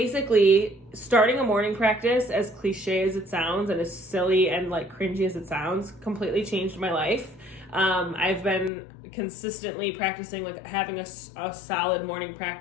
starting a morning practice, as cliche as it sounds and as silly and like cringy as it sounds, completely changed my life. I've been consistently practicing, like having a solid morning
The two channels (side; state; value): right; drops out; at 8.7 s